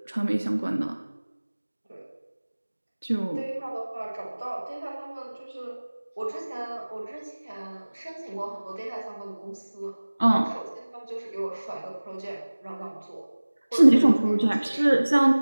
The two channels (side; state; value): both; inverted; correlation -1.00